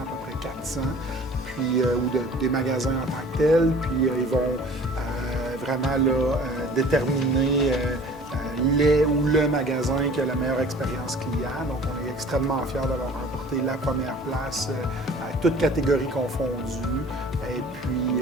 peu près 400, puis, ou des magasins en tant que tels. Puis, ils vont vraiment là, déterminer les ou le magasin qui a la meilleure expérience client. Donc, on est extrêmement fiers d'avoir remporté la première place à toutes catégories confondues. Et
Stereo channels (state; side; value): normal; both; correlation 0.47